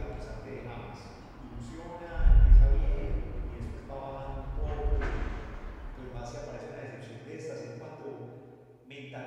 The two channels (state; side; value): identical; both; correlation 1.00